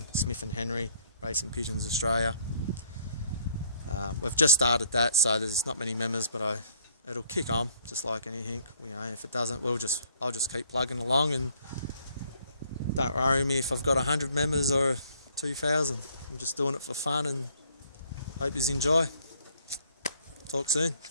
Smith and Henry, Racing Pigeons Australia. We've just started that, so there's not many members, but it'll kick on, just like anything. You know, if it doesn't, I'll just keep plugging along, and don't worry me if I've got 100 members or 2,000. I'm just doing it for fun, and hope you enjoy. Talk soon.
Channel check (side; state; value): both; inverted; correlation -0.63